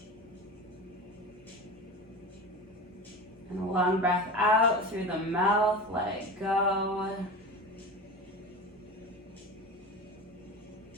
And a long breath out through the mouth, let it go.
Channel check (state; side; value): normal; both; correlation 0.30